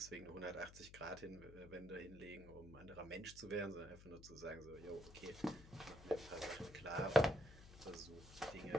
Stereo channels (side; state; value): left; noise; hum, 17 dB below the sound